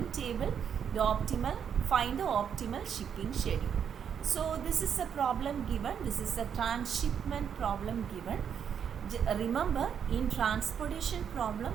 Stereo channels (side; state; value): left; quieter; 7.9 dB